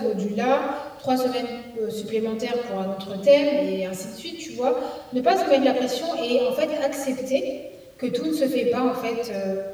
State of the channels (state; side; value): identical; both; correlation 1.00